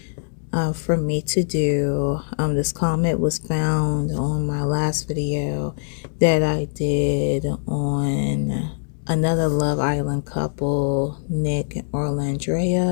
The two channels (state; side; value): silent; right; digital silence